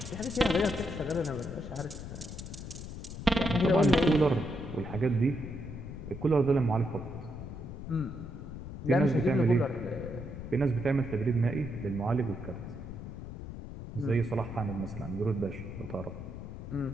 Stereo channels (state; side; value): noise; left; rumble, 9 dB below the sound